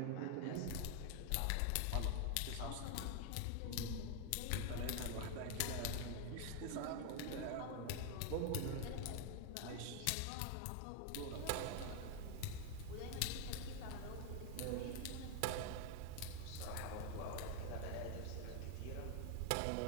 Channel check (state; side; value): different; both; correlation 0.00